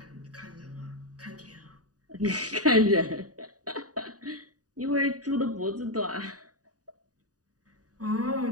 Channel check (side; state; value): left; late; 0.68 ms